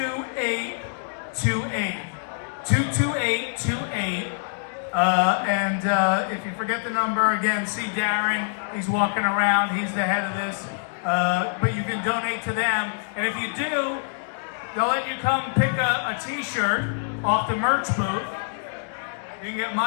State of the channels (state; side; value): silent; right; digital silence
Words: 22828. And if you forget the number, again, see Darren. He's walking around. He's the head of this. But you can donate to them. And if you do, they'll let you come pick a t-shirt off the merch booth. You can get